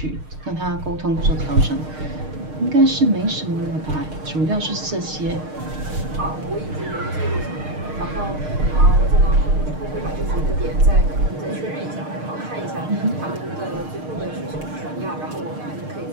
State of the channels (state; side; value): late; left; 6.5 ms